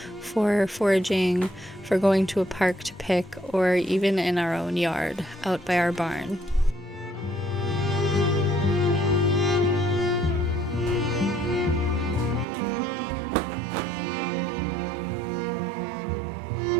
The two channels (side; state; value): left; drops out; at 12.5 s